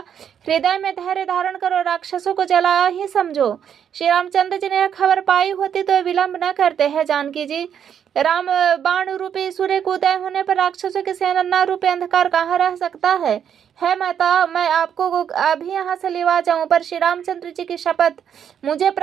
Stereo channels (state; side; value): quieter; left; 8.6 dB